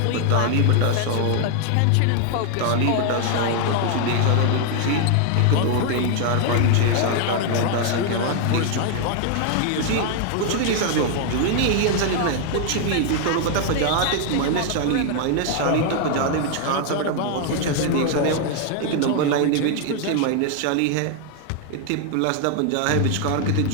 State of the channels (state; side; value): different; both; correlation 0.00